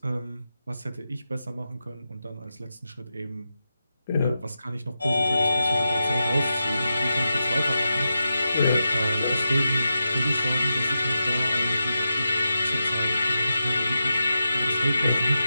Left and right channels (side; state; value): both; inverted; correlation -0.89